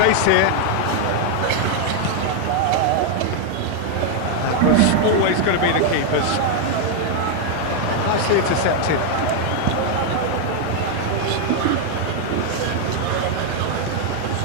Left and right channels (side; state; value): both; different; correlation 0.00